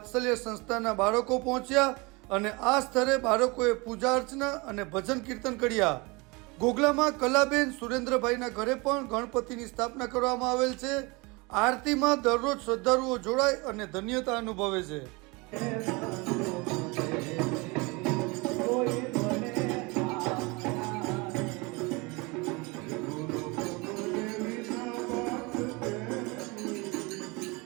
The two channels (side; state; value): left; quieter; 26.5 dB